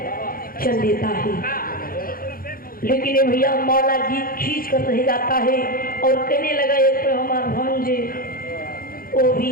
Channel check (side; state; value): right; late; 0.42 ms